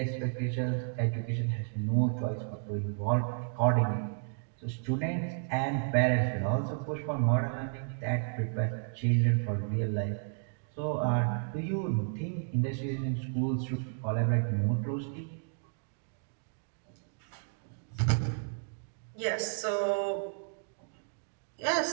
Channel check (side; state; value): left; silent; digital silence